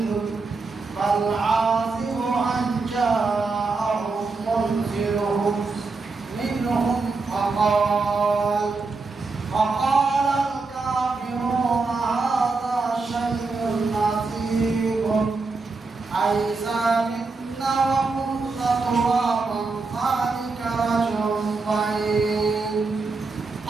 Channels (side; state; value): left; quieter; 4.0 dB